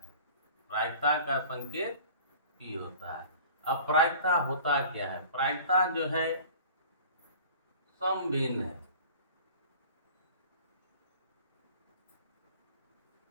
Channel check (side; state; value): both; inverted; correlation -0.44